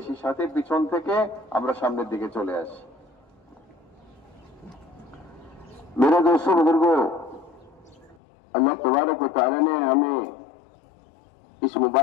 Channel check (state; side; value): drops out; right; at 8.2 s